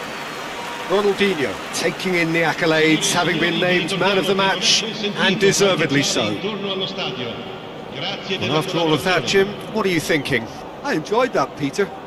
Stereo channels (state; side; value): identical; both; correlation 1.00